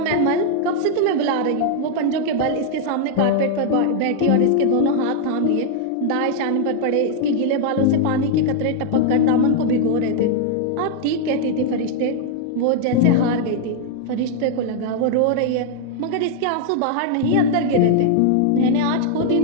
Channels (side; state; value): both; different; correlation 0.00